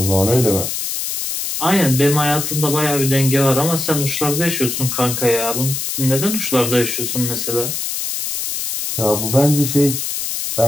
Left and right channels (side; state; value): left; noise; hiss, 3 dB below the sound